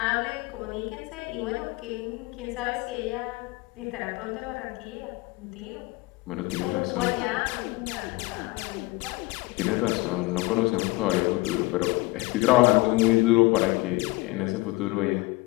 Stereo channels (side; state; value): right; quieter; 23.0 dB